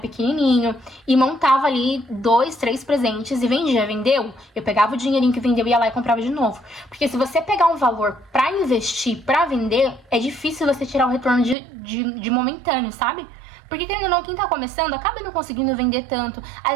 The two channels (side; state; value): left; drops out; at 11.6 s